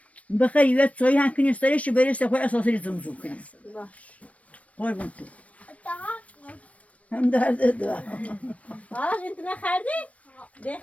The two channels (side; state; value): right; late; 0.065 ms